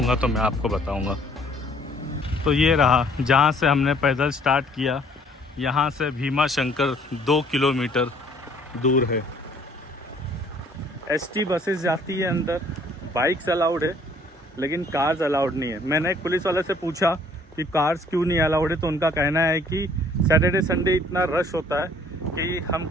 तो मैं आपको बताऊंगा। तो ये रहा जहाँ से हमने पैदल स्टार्ट किया, यहाँ से भीमा शंकर 2 किलोमीटर दूर है। एसटी बसेस जाती है अंदर, बाइक्स अलाउड है लेकिन कार्स अलाउड नहीं है। मैंने एक पुलिस वाले से पूछा कि कार्स क्यों नहीं अलाउड है, तो उनका कहना है कि सैटरडे संडे इतना रश होता है कि हम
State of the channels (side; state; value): both; normal; correlation 0.59